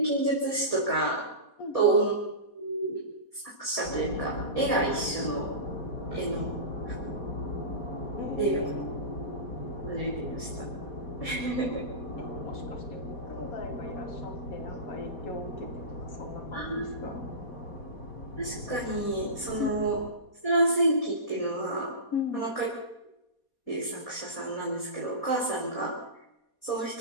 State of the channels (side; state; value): right; late; 4.2 ms